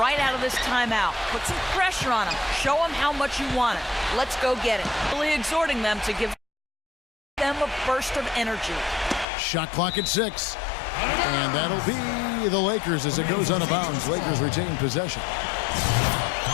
right out of this timeout. Put some pressure on them. Show them how much you want it. Let's go get it. Really exhorting them to give them a burst of energy. Shot clock at 6. And that'll be the Lakers as it goes out of bounds. Lakers retain possession.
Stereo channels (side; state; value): right; drops out; at 9.2 s